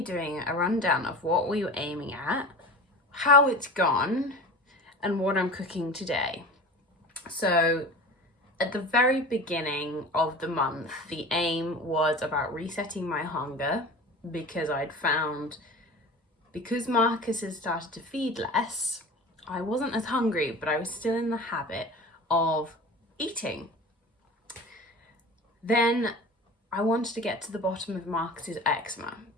doing a rundown of what we were aiming at, how it's gone, and what I'm cooking today. So at the very beginning of the month, the aim was about resetting my hunger, because I'd found, because Marcus has started to feed less, I wasn't as hungry, but I was still in the habit of eating. Then I wanted to get to the bottom of Marcus's eczema,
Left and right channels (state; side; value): normal; both; correlation 0.35